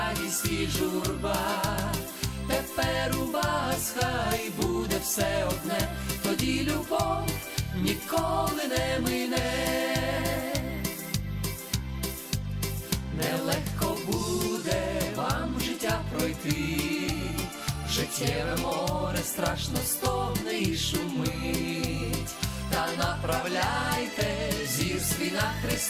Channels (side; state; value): both; identical; correlation 1.00